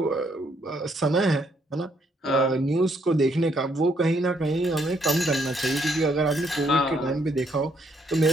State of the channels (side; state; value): both; normal; correlation 0.71